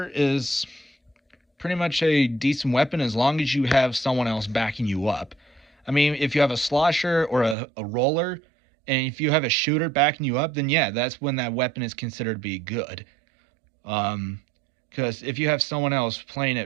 is pretty much a decent weapon as long as you have someone else backing you up. I mean, if you have a Slosher or a roller, and if you have a shooter backing you up, then yeah, that's when that weapon is considered to be good. Because if you have someone else playing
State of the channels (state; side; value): drops out; left; at 7.6 s